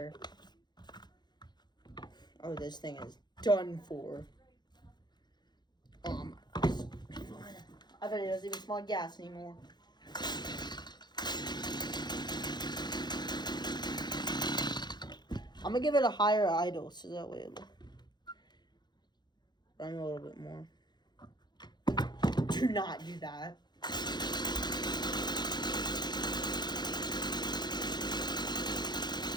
Oh, this thing is done for. Oh my gosh. I bet it doesn't even smell like gas anymore. I'm gonna give it a higher idle so that way it'll run a little bit more. Do not do that.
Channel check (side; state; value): right; late; 0.21 ms